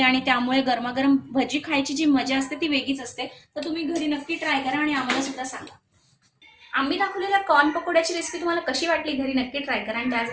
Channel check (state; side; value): identical; both; correlation 1.00